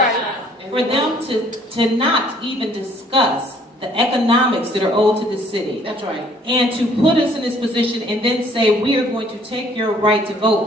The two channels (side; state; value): both; normal; correlation 0.60